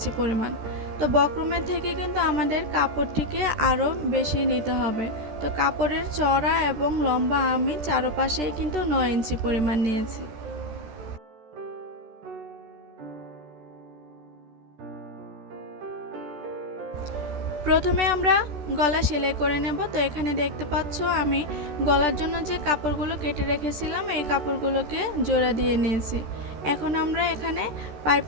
পরিমাণ। তো বক্রমের থেকে কিন্তু আমাদের কাপড়টিকে আরও বেশি নিতে হবে। তো কাপড়ের চওড়া এবং লম্বা আমি চারপাশেই কিন্তু 9 ইঞ্চি পরিমাণ নিয়েছি। প্রথমে আমরা গলা সেলাই করে নেব। তো এখানে দেখতে পাচ্ছ আমি গলার জন্য যে কাপড়গুলো কেটে রেখেছিলাম এই কাপড়গুলোকে জোড়া দিয়ে নিয়েছি। এখন আমরা এখানে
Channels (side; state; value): left; late; 13 ms